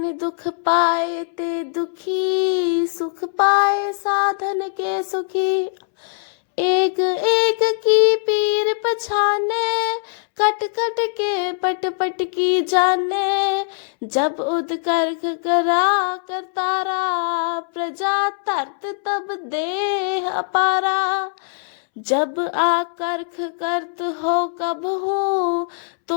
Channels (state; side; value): silent; right; 65 dB below the other